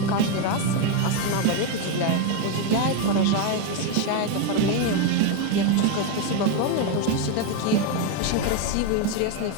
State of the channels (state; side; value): different; both; correlation 0.02